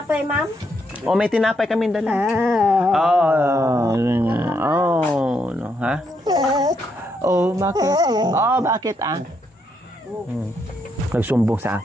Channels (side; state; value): both; normal; correlation 0.77